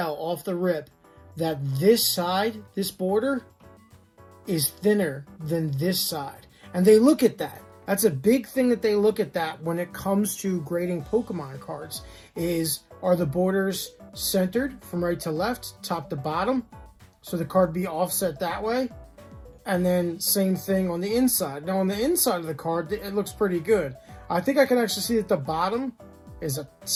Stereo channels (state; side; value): identical; both; correlation 1.00